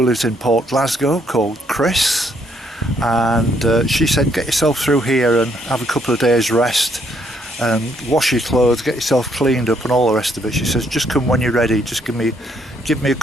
lives in Port Glasgow called Chris, and she said, get yourself through here and have a couple of days rest and wash your clothes, get yourself cleaned up and all the rest of it. She says, just come when you're ready, just give me a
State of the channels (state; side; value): normal; both; correlation 0.71